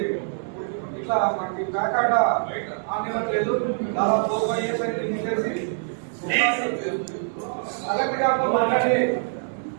ఇట్లా మనకి బ్యాక్ ఆట ఆనివ్వట్లేదు, దాదాపు 4-5 years అయింది తీసేసి కలెక్టర్ గారితో మాట్లాడి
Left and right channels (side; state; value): left; silent; digital silence